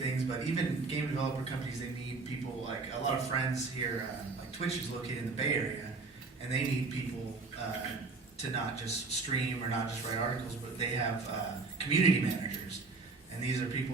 things. But even game developer companies, they need people. Like a lot of friends here, like Twitch is located in the Bay Area, and they need people to not just stream or not just write articles, but they have community managers, and these are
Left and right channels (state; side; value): quieter; left; 4.0 dB